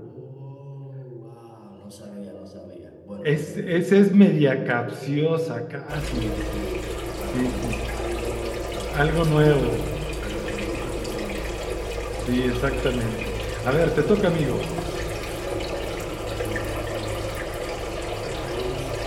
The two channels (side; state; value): both; identical; correlation 1.00